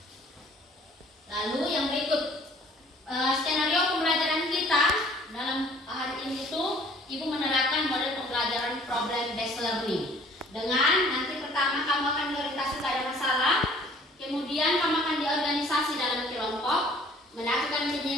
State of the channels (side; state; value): both; normal; correlation 0.55